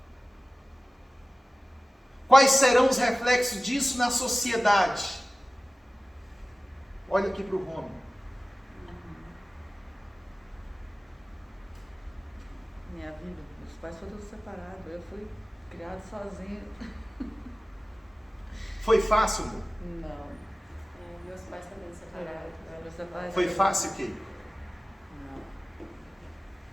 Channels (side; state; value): both; normal; correlation 0.97